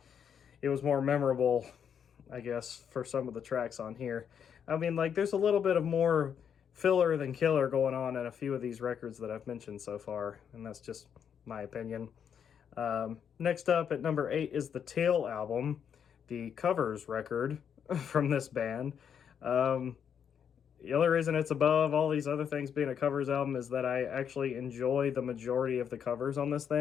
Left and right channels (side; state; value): right; quieter; 7.9 dB